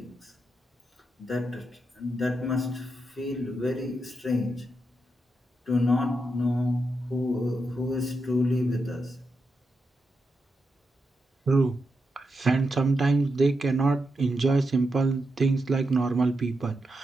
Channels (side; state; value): both; normal; correlation 0.85